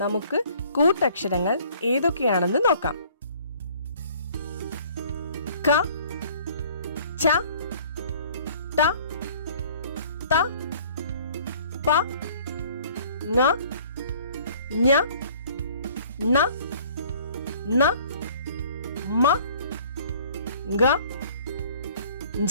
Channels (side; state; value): both; inverted; correlation -0.54